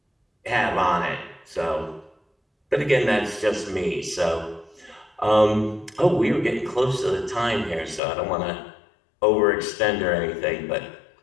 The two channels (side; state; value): right; drops out; at 8.0 s